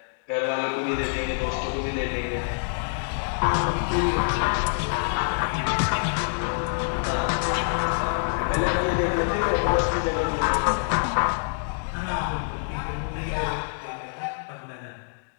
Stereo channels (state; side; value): silent; right; digital silence